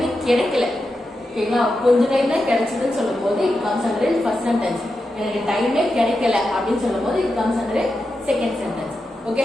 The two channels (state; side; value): normal; both; correlation 0.89